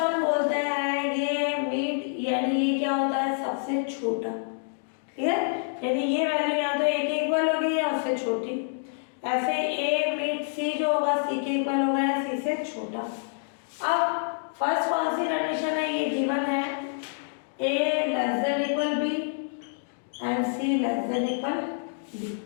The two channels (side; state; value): right; silent; digital silence